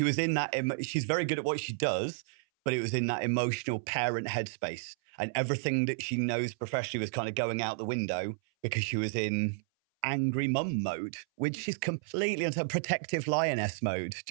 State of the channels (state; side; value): silent; left; 57 dB below the other